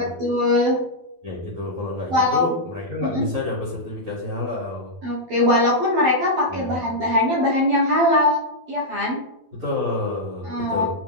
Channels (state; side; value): late; left; 12 ms